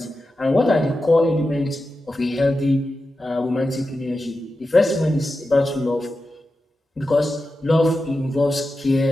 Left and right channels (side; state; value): both; normal; correlation 0.91